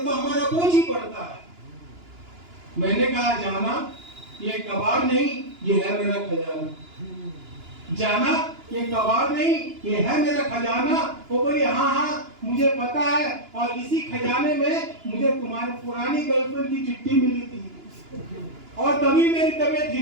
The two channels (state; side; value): late; left; 2.9 ms